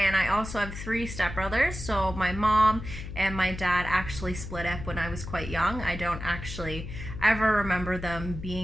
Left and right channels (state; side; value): noise; left; hum, 9 dB below the sound